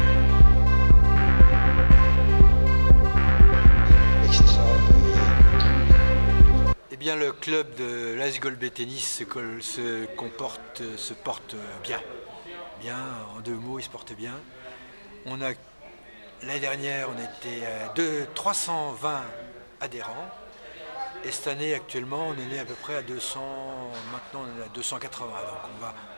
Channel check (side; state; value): both; inverted; correlation -1.00